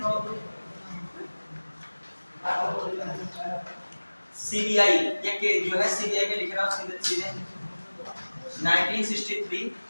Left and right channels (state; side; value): inverted; both; correlation -1.00